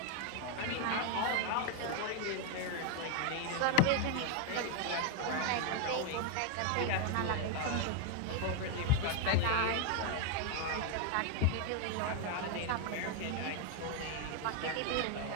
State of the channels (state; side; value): different; both; correlation 0.01